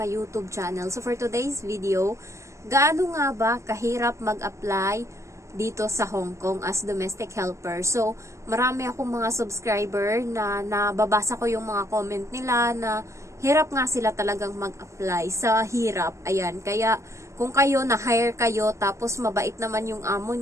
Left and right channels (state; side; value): late; left; 0.14 ms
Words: YouTube channel. So for today's video, gaano nga ba kahirap mag-apply dito sa Hong Kong as domestic helper? So marami akong mga subscriber na nababasa ko yung mga comment nila na hirap nga sila talagang mag-apply sa hirap. Ayan, kaya kung kayo na-hire kayo tapos mabait naman yung amo